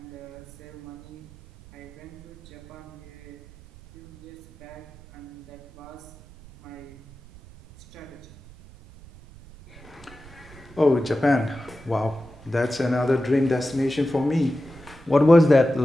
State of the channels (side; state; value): right; noise; rumble, 20 dB below the sound